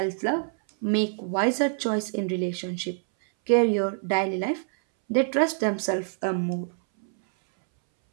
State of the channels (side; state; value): left; silent; 61 dB below the other